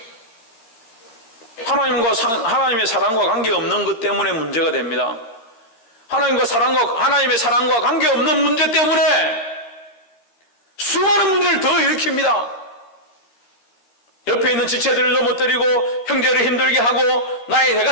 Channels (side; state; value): right; late; 13 ms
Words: 하나님의 사랑과 관계없는 것 때문에 문제가 됩니다. 하나님의 사랑과 관계없는 문제 때문에 수많은 문제를 더 일으킵니다. 옆에 있는 지체들을 넘어뜨리고 형제를 힘들게 하고